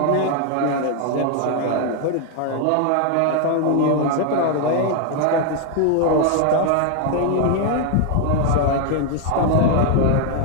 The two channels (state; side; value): different; both; correlation 0.00